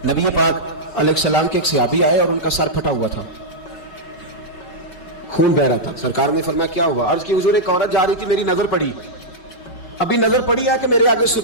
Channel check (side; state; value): right; late; 5.3 ms